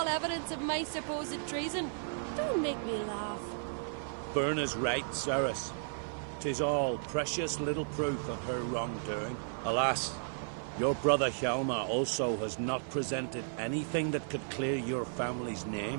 evidence of my supposed treason? Don't make me laugh. Berna's right, Ceres. 'Tis all precious little proof of her wrongdoing. Alas, your brother Hjalmar also has not presented anything that could clear your family's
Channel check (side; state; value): left; silent; 55 dB below the other